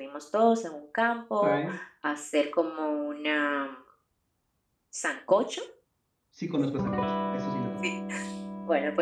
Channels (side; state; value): both; identical; correlation 1.00